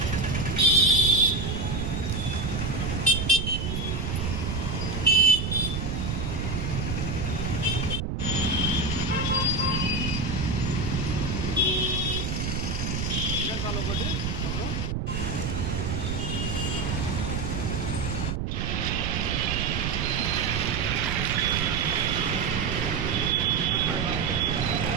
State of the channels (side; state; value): right; noise; rumble, 2 dB below the sound